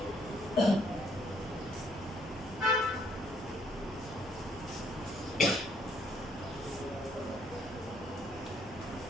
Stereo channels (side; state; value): left; noise; hum, 18 dB below the sound